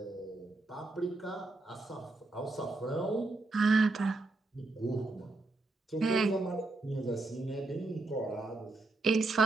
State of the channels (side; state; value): left; quieter; 3.2 dB